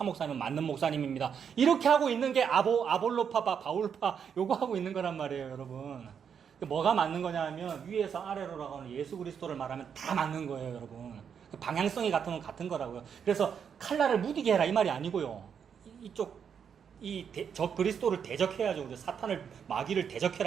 목사님은 맞는 목사님입니다. 이렇게 하고 있는 게 아볼로파, 바울파, 요거 하고 있는 거란 말이에요, 여러분. 뭐가 맞는 거냐 하면, 위에서 아래로라고 하는 예수 그리스도를 말하면 다 맞는 거예요, 여러분. 방향성이 같으면 같은 거라고요. 그래서 칼날을 무디게 해라, 이 말이 아니고요. 저 그리스도를 대적해야죠. 그래서 사탄을, 마귀를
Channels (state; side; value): quieter; left; 7.4 dB